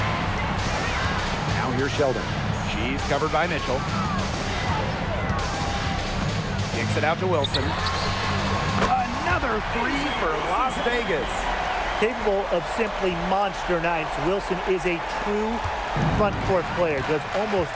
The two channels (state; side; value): identical; both; correlation 1.00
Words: Now here's Sheldon. She's covered by Mitchell. Kicks it out to Wilson. Another 3 for Las Vegas. Capable of simply monster nights, Wilson is a true front court player. Does almost